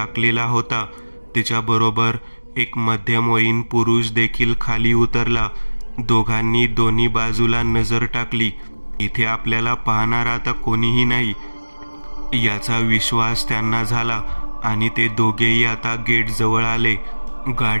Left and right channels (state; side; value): inverted; both; correlation -1.00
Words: होता. तिच्याबरोबर एक मध्यमवयीन पुरुष देखील खाली उतरला. दोघांनी दोन्ही बाजूला नजर टाकली. इथे आपल्याला पाहणार आता कोणीही नाही याचा विश्वास त्यांना झाला आणि ते दोघेही आता गेटजवळ आले.